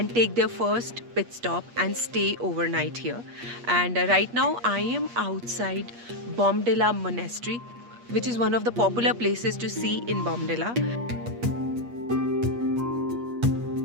take their first pit stop and stay overnight here. And right now, I am outside Bomdila Monastery, which is one of the popular places to see in Bomdila.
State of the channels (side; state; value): left; late; 8.4 ms